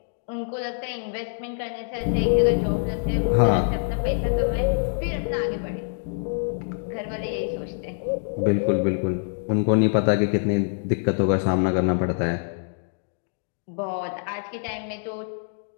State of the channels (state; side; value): silent; right; digital silence